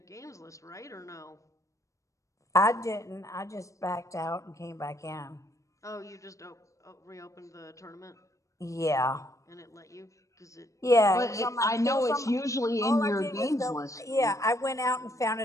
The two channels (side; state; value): right; late; 0.15 ms